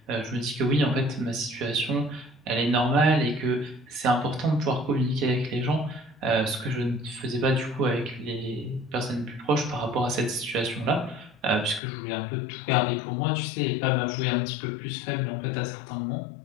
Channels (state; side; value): drops out; right; at 11.8 s